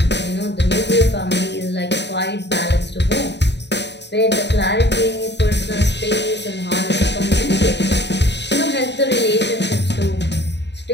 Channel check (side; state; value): right; late; 0.50 ms